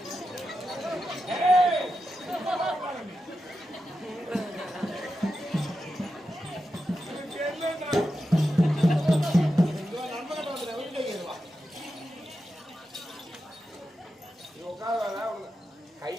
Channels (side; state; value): both; normal; correlation 0.89